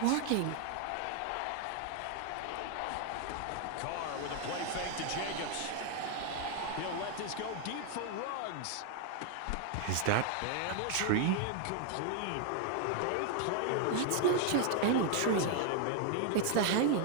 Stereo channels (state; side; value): different; both; correlation 0.00